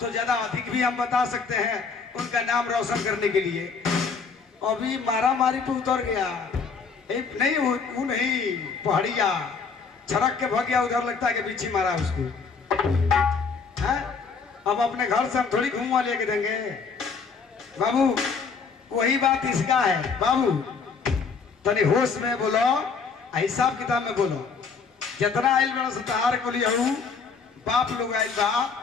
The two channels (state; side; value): quieter; right; 5.2 dB